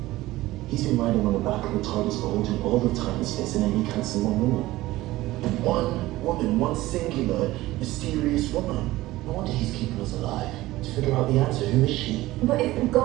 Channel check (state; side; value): quieter; left; 17.4 dB